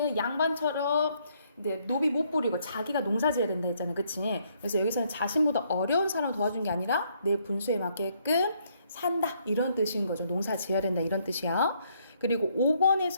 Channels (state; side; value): inverted; both; correlation -0.70